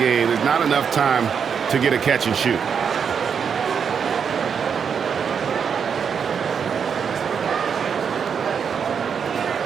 There's not enough time to get a catch and shoot.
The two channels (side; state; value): left; quieter; 6.9 dB